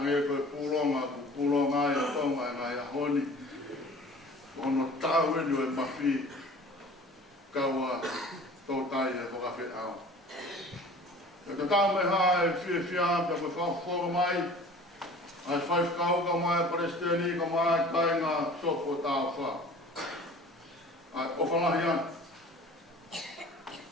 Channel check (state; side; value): normal; both; correlation 0.45